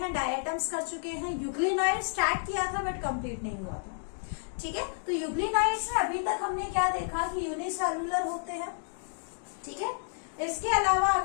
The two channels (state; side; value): silent; right; digital silence